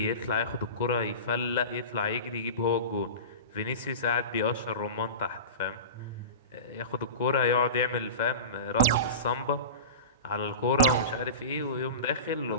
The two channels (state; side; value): inverted; both; correlation -0.30